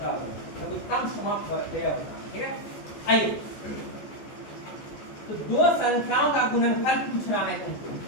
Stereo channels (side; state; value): right; late; 14 ms